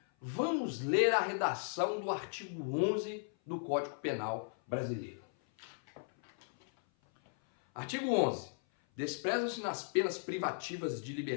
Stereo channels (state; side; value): silent; right; 54 dB below the other